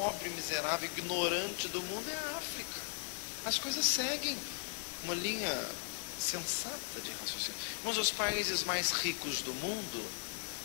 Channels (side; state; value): right; silent; 53 dB below the other